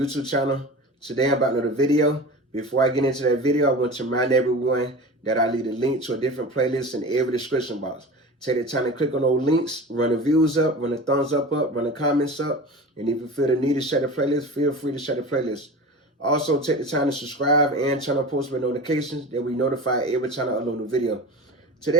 channel. Today I'm about another video. Before I get into that video, I want to remind everyone that I leave a link to a different playlist in every description box. Take the time to click on those links, run the views up, run the thumbs up, run the comments up, and if you feel the need to share the playlist, feel free to share the playlist. Also, take the time to subscribe and turn on post notifications that we notify every time I upload a video.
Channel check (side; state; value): both; normal; correlation 0.33